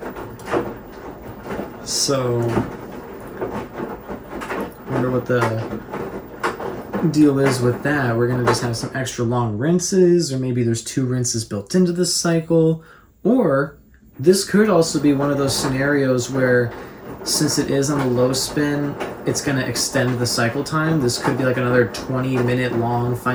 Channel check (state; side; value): identical; both; correlation 1.00